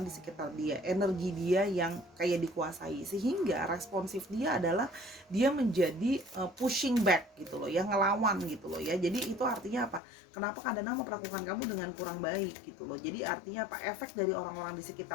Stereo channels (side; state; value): right; drops out; at 10.0 s